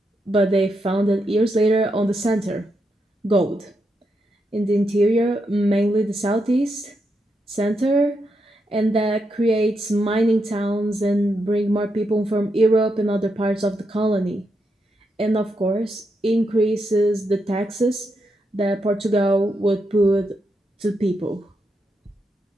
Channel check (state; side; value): normal; both; correlation 0.83